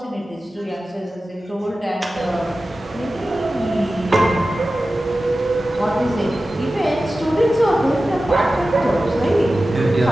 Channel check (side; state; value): both; normal; correlation 0.95